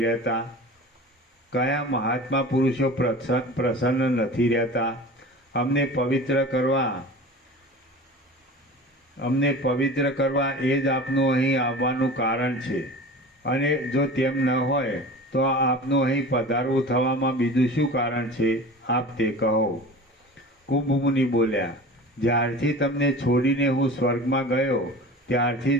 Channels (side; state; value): both; normal; correlation 0.36